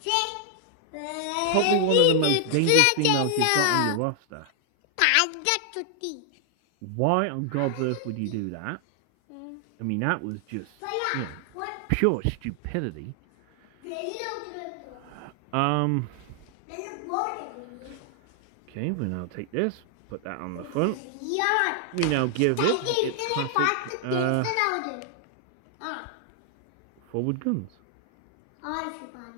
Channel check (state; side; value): different; both; correlation 0.00